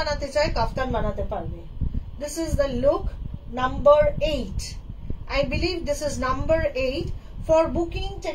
chai kaftan banate parbe. This is the look number 8. I believe this is number 8. For booking,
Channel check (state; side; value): identical; both; correlation 1.00